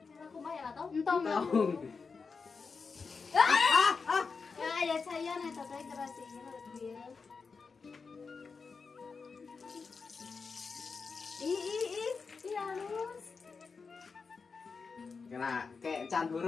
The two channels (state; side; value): quieter; right; 4.9 dB